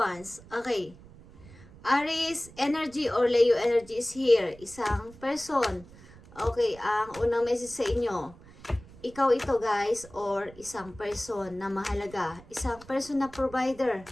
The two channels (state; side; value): noise; right; rumble, 21 dB below the sound